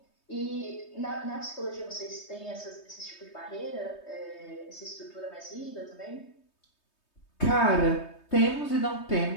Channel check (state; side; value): late; right; 3.2 ms